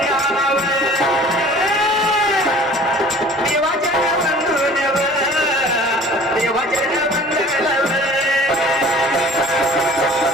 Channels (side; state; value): both; normal; correlation 0.47